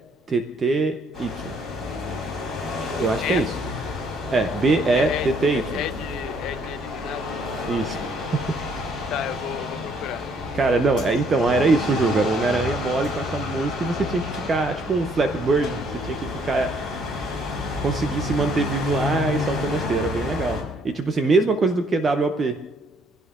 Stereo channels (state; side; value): normal; both; correlation 0.66